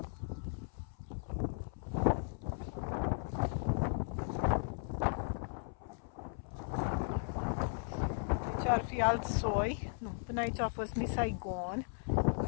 Ar fi alt soi. Nu, până aici a fost Miss Saigon.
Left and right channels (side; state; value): right; silent; 53 dB below the other